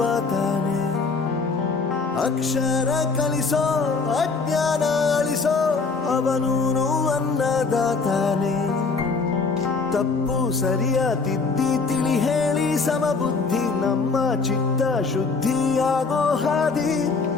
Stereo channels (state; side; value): quieter; right; 4.5 dB